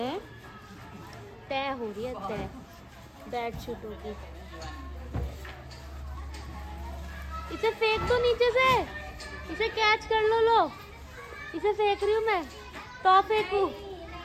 तय बेडशीटों की। इसे फेंक दो नीचे से, इसे कैच कर लो। इसे फेंक रही हूँ मैं, तो फेंकू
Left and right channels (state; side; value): identical; both; correlation 1.00